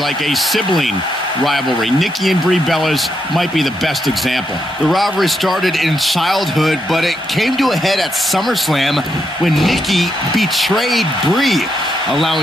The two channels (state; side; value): normal; both; correlation 0.80